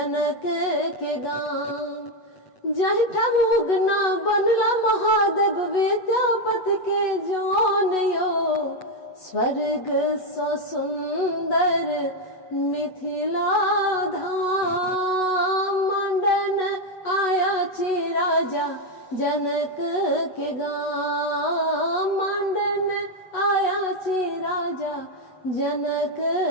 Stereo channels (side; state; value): right; late; 8.1 ms